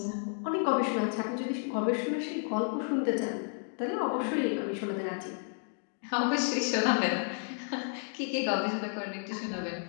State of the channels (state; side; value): silent; right; 57 dB below the other